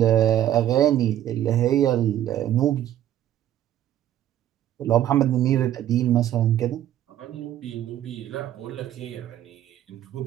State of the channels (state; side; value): quieter; left; 11.8 dB